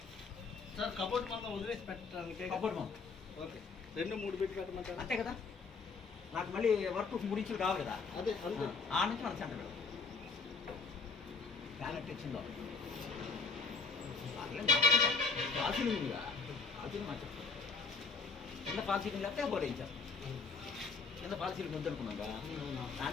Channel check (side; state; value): right; quieter; 4.7 dB